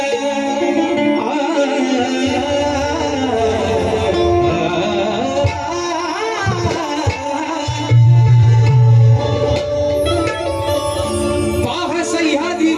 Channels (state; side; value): identical; both; correlation 1.00